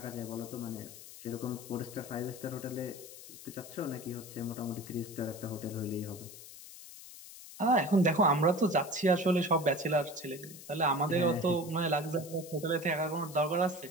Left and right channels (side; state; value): left; noise; hiss, 15 dB below the sound